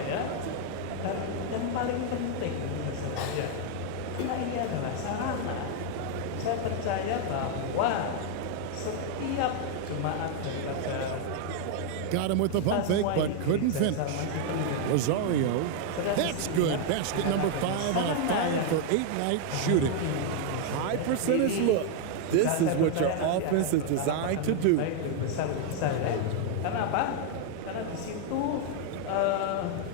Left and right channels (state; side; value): different; both; correlation 0.00